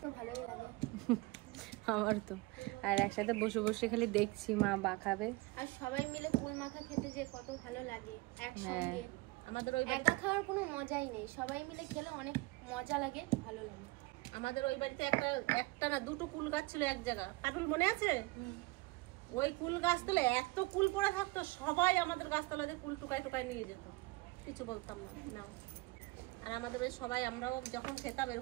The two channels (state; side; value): quieter; left; 22.9 dB